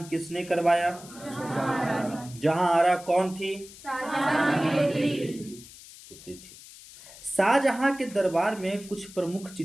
किसने करवाया? जहां आरा कौन थी? पुत्री थी। शाहजहां के दरबार में कुछ प्रमुख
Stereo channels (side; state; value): left; noise; hiss, 18 dB below the sound